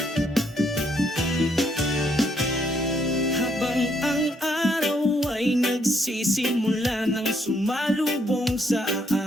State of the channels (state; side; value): normal; both; correlation 0.72